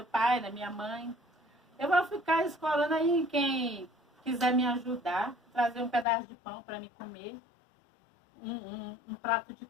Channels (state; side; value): drops out; right; at 6.1 s